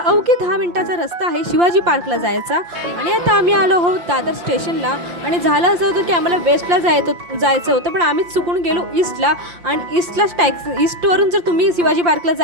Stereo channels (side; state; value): left; late; 5.8 ms